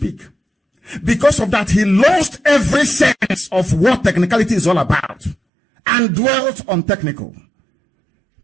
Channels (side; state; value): left; drops out; at 5.4 s